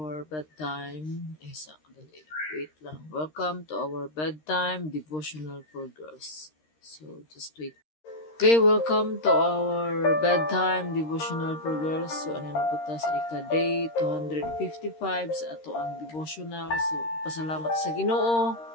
bedtime. Wait lang. Welcome to our bedtime devotional for girls. So, just wait. Okay, welcome to our bedtime devotional for girls. So, ano na po ta sa ika-day 255 sa ato ang devotional. So, pasalamat sa Ginoo.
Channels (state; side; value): late; right; 13 ms